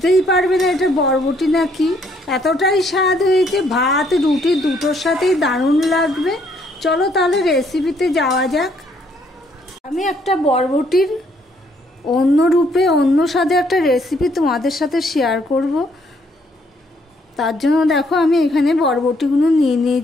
পারবে না এটা বরবটি না কি। এতটাই স্বাদ হয়েছে, ভাত রুটি দুটোর সাথেই দারুণ লাগবে। চলো তাহলে রেসিপিতে যাওয়া যাক। আমি একটা বরবটির অন্য রূপে, অন্য স্বাদে একটা রেসিপি তোমাদের সাথে শেয়ার করব। তার জন্য দেখো আমি এখানে বরবটিগুলো নিয়ে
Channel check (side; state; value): both; normal; correlation 0.68